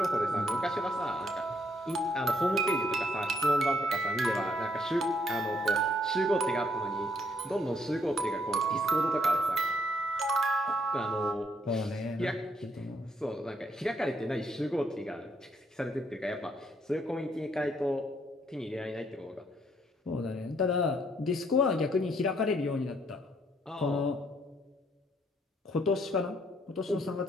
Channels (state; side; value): normal; both; correlation 0.70